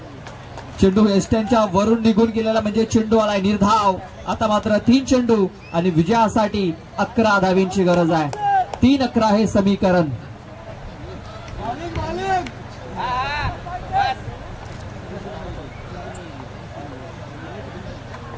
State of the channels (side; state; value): both; identical; correlation 1.00